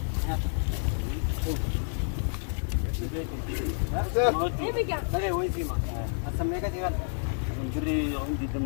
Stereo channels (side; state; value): right; silent; digital silence